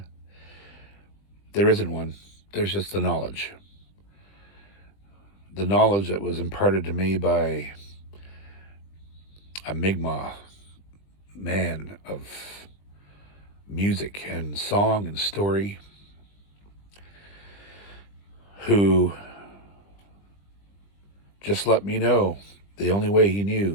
there isn't one. There's just the knowledge. The knowledge that was imparted to me by a Mi'kmaq man of music and song and story, who just let me know the only way he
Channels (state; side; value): late; right; 20 ms